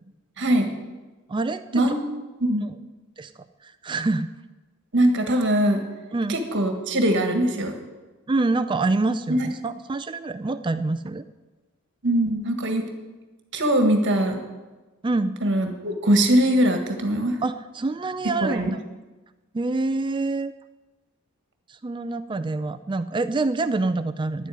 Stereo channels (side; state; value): both; normal; correlation 0.62